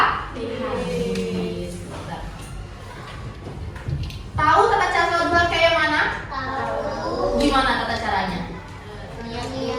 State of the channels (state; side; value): identical; both; correlation 1.00